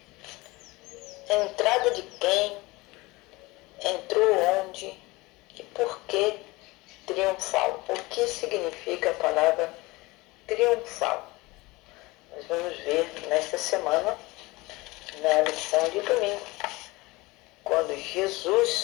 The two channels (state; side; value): quieter; right; 22.1 dB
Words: Entrada de quem? Entrou onde? E por que triunfal? O que significa a palavra triunfal? Nós vamos ver nesta semana, na lição de domingo, quando